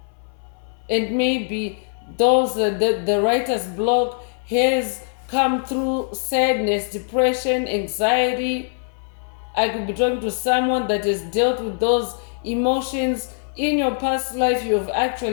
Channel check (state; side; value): silent; right; 64 dB below the other